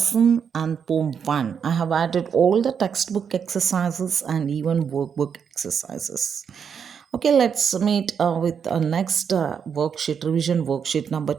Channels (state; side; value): quieter; left; 7.1 dB